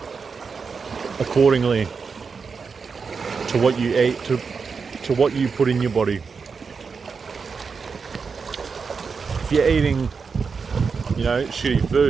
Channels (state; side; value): quieter; left; 5.3 dB